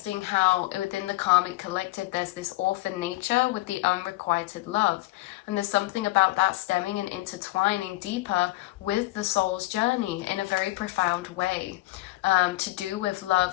how within the karmic collective there's this orphan nature with the unrequited love, and there's something about that stemming and intertwining deeper with the soul's journey in a very profound way, to do with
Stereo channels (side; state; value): right; quieter; 19.2 dB